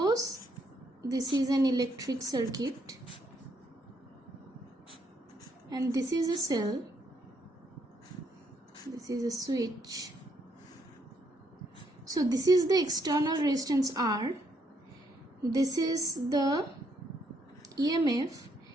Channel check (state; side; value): normal; both; correlation 0.73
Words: this is an electric circuit and this is a cell. This is a switch. So this is the external resistance R. This is the EMF